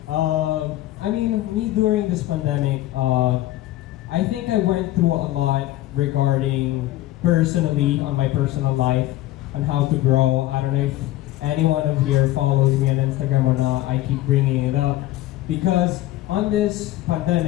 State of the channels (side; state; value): right; quieter; 15.5 dB